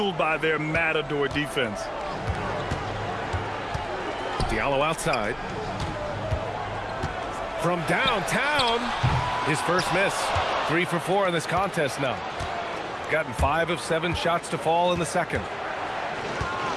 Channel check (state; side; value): identical; both; correlation 1.00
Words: by their matador defense. Diallo outside. From downtown, his first miss. 3 for 4 in this contest now. Gotten 5 of 7 shots to fall in the second.